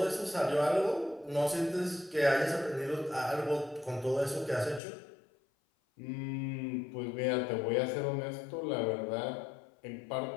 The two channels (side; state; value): right; drops out; at 4.8 s